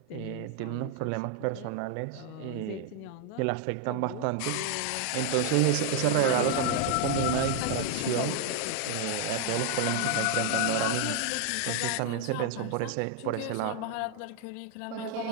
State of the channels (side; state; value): both; different; correlation 0.00